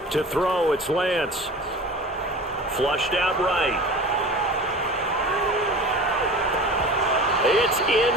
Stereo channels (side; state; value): both; normal; correlation 0.37